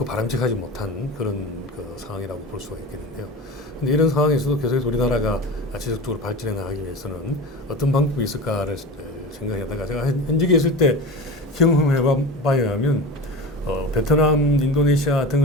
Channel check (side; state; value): both; normal; correlation 0.30